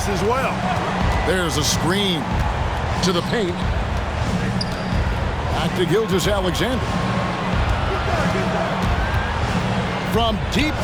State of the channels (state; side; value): identical; both; correlation 1.00